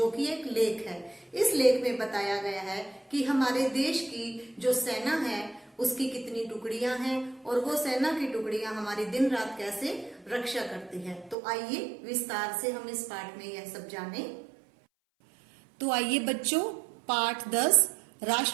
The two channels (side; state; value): left; drops out; at 11.4 s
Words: कि एक लेख है। इस लेख में बताया गया है कि हमारे देश की जो सेना है उसकी कितनी टुकड़ियां हैं और वो सेना की टुकड़ियां हमारी दिन रात कैसे रक्षा करती है। तो आइए विस्तार से हम इस पाठ में यह सब जाने। तो आइए बच्चों, पाठ 10